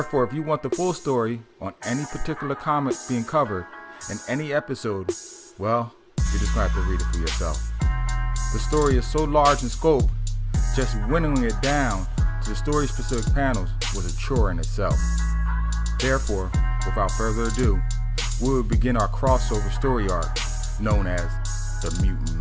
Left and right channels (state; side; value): identical; both; correlation 1.00